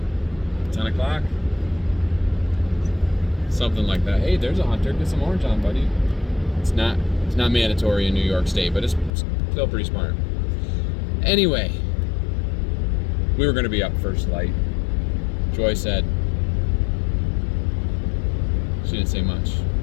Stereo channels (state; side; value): drops out; right; at 9.1 s